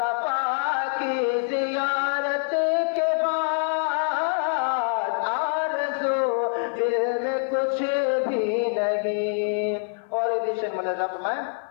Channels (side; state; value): right; silent; 56 dB below the other